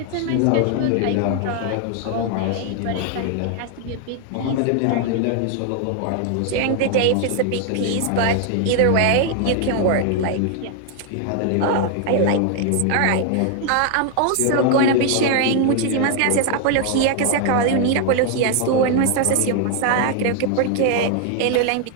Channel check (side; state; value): both; different; correlation 0.00